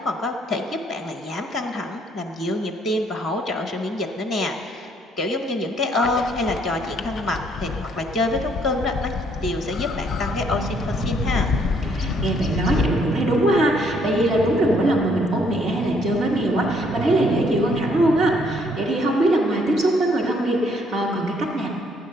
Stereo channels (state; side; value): normal; both; correlation 0.67